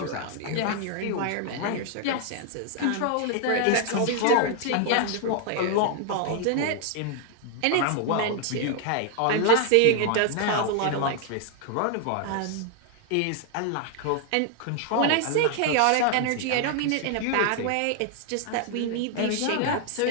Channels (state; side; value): different; both; correlation 0.00